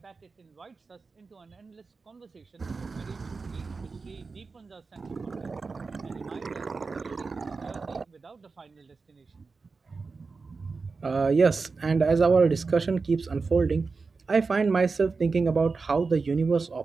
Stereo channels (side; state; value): left; quieter; 4.4 dB